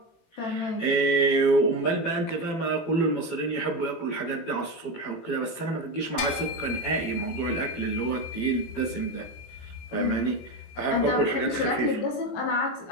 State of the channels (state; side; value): late; right; 18 ms